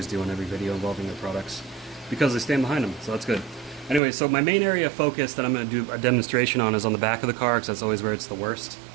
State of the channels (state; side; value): drops out; left; at 4.0 s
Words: do on every video involving their products because they stand behind them, so that's good. Anyway, so my main area of focus that I'm going to do a demonstration on is on the back of the car, because that's always where it's the worst.